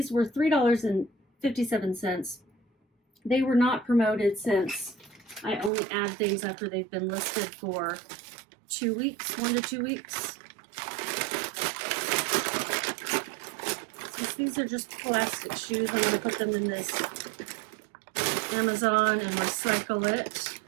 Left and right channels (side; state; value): left; drops out; at 5.7 s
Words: were $3.57. They were not promoted since I only add things after they've been listed for 2 weeks, 1 to 2 weeks. Since these are just plastic shoes, I'm going to put them in this Amazon and recycle it